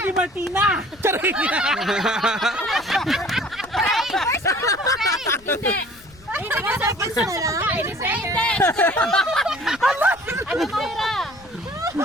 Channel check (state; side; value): noise; left; rumble, 25 dB below the sound